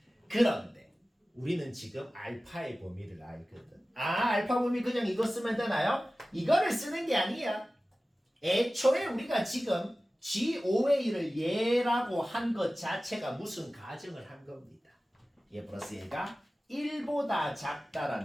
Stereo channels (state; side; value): normal; both; correlation 0.96